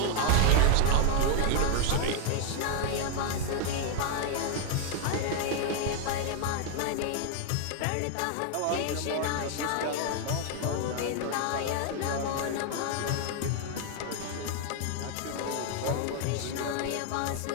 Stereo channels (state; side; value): different; both; correlation 0.01